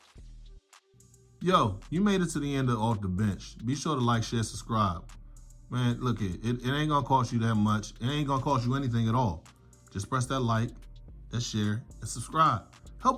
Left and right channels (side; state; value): both; identical; correlation 1.00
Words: Yo, you made it to the end of Off the Bench. Be sure to like, share, subscribe. Man, look, it ain't gonna cost you that much. It ain't gonna cost you anything at all. Just press that like, that share, and subscribe.